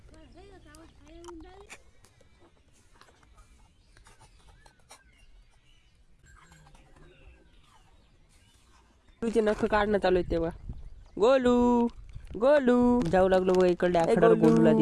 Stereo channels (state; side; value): identical; both; correlation 1.00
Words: तुझे नख काढणं चालू आहे तेव्हा. गोलू गोलू जाऊ लागलो बघा इकडे आखड्यावर. गोलूला